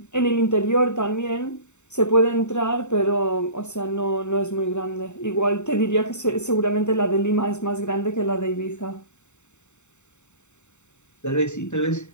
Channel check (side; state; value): right; late; 0.84 ms